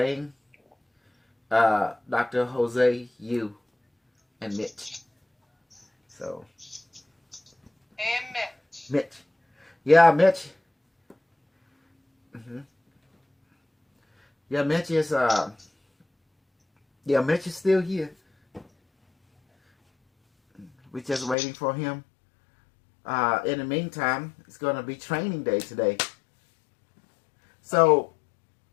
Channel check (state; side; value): drops out; right; at 21.4 s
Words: Dr. Jose, you, and Mitch. So. And Mitch. Mitch. Yeah, Mitch. Yeah, Mitch is Mitch is still here. We're just waiting for him. In the meantime, it's gonna be training day today. So,